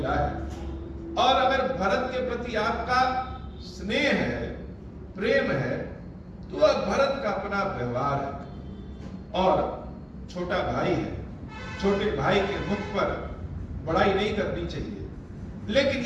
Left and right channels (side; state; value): both; identical; correlation 1.00